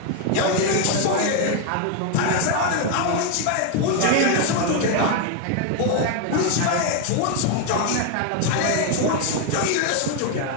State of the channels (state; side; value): different; both; correlation 0.01